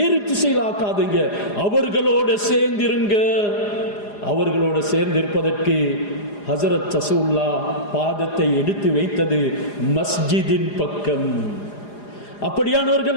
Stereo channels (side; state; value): right; late; 4.9 ms